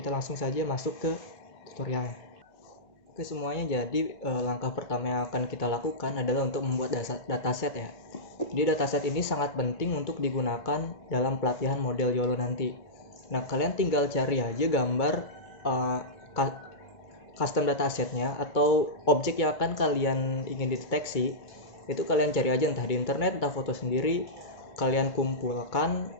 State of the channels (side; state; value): right; late; 2.2 ms